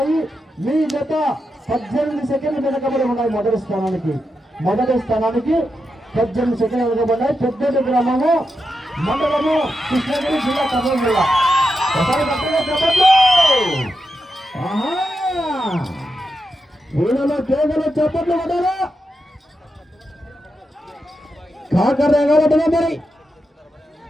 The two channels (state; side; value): normal; both; correlation 0.87